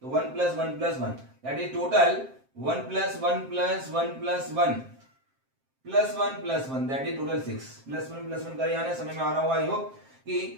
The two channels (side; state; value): left; late; 7.6 ms